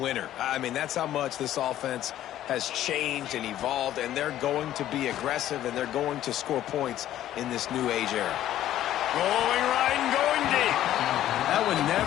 I mean, that's how much this offense has changed and evolved, and they're going to be aggressive, and they're going to score points in this new age era. Rolling right and going deep. That one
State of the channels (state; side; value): quieter; right; 12.6 dB